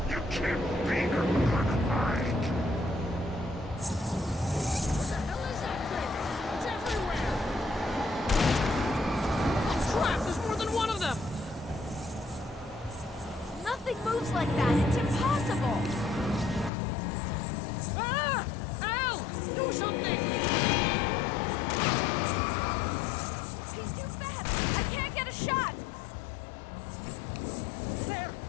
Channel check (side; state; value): right; drops out; at 16.7 s